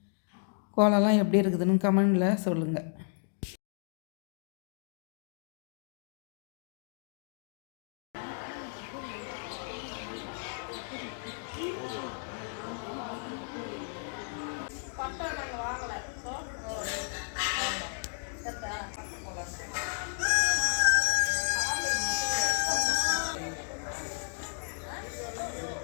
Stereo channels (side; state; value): right; silent; 56 dB below the other